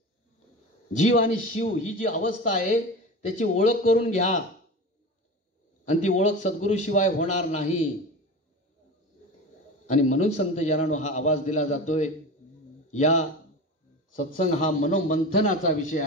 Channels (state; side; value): normal; both; correlation 0.30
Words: जीव आणि शिव ही जी अवस्था आहे त्याची ओळख करून घ्या, आणि ती ओळख सद्गुरु शिवाय होणार नाही. आणि म्हणून संत जनानो हा आवाज दिला जातोय. या सत्संग हा मनोमंथनाचा विषय